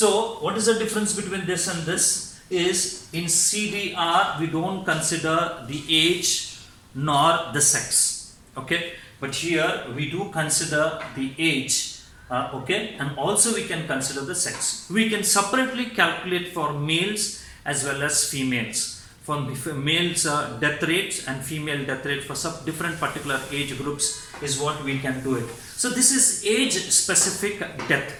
what is the difference between this and this is in CDR we don't consider the age nor the sex, okay, but here we do consider the age, okay, and also we can consider the sex. We can separately calculate for males as well as females. For males death rates and female death rate for some different particular age groups is what we can do it. So this is age specific death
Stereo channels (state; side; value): identical; both; correlation 1.00